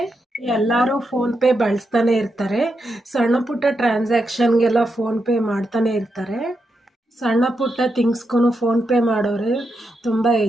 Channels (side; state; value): both; normal; correlation 0.84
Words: ಎಲ್ಲರೂ ಫೋನ್ಪೇ ಬಳಸ್ತಾನೆ ಇರ್ತಾರೆ. ಸಣ್ಣ ಪುಟ್ಟ ಟ್ರಾನ್ಸಾಕ್ಷನ್ಗೆಲ್ಲ ಫೋನ್ಪೇ ಮಾಡ್ತಾನೆ ಇರ್ತಾರೆ. ಸಣ್ಣ ಪುಟ್ಟ ಥಿಂಗ್ಸ್ಗೂ ಫೋನ್ಪೇ ಮಾಡೋರು ತುಂಬ